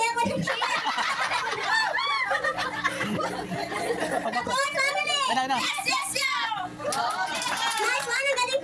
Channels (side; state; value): both; identical; correlation 1.00